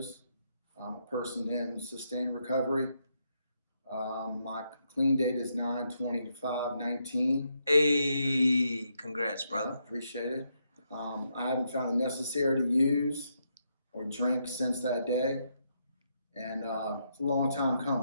I'm a person in sustained recovery. My clean date is 9/25/19. Hey, congrats, brother. Appreciate it. I haven't found it necessary to use or drink since that day, and it's a long time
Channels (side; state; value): both; inverted; correlation -0.79